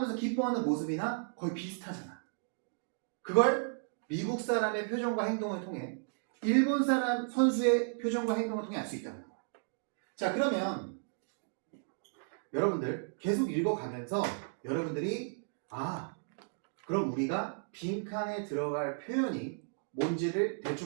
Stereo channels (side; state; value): left; silent; digital silence